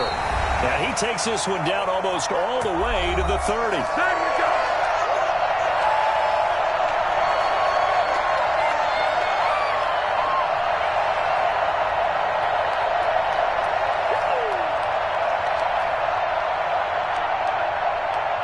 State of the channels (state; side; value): identical; both; correlation 1.00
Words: And he takes this one down almost all the way to the 30.